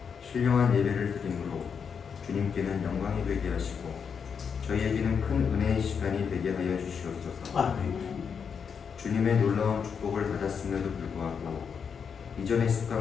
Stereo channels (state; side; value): quieter; right; 6.6 dB